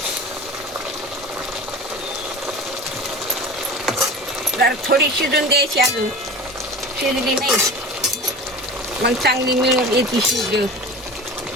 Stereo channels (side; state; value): both; normal; correlation 0.34